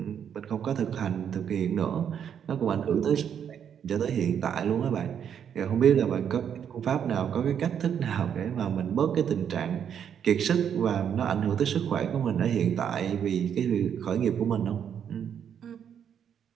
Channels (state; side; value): quieter; left; 8.4 dB